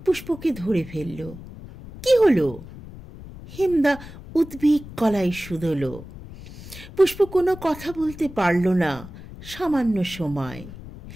পুষ্পকে ধরে ফেলল। কি হলো? হেমদা উদ্বেগ গলায় শুধল। পুষ্প কোনো কথা বলতে পারল না সামান্য সময়।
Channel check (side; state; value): left; noise; rumble, 15 dB below the sound